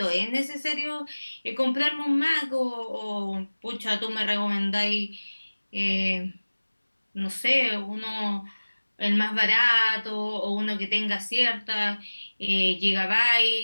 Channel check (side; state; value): both; inverted; correlation -1.00